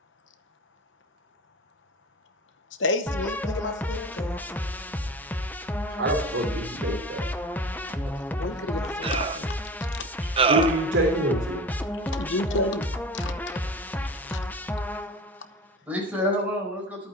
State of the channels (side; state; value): both; normal; correlation 0.34